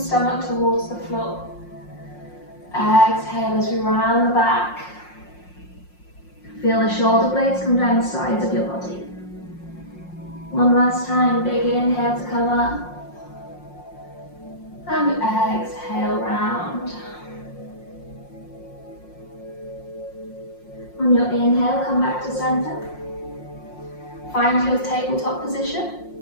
towards the floor. Exhale as we round the back. Feel the shoulder blades come down the sides of your body. One last time, big inhale to come up. And exhale, round. On your inhale, come back to center. Find your tabletop position.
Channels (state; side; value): late; right; 5.6 ms